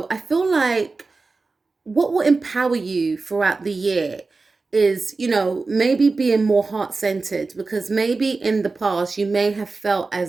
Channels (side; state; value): left; quieter; 3.9 dB